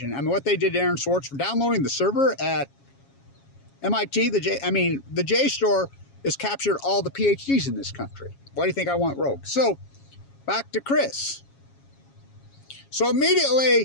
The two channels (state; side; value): late; right; 7.3 ms